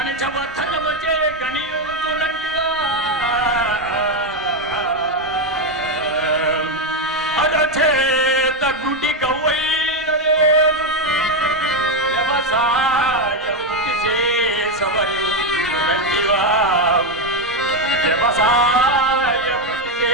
గణియుతునంటివా అరచేత గుడి గవ్వై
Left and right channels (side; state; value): both; normal; correlation 0.06